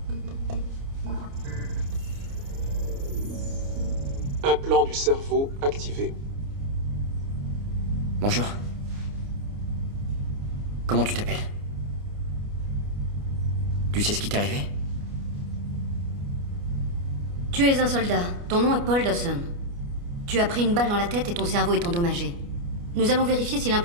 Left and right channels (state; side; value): late; left; 29 ms